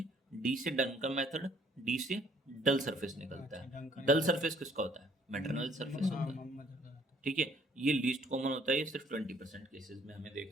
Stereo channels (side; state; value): both; normal; correlation 0.61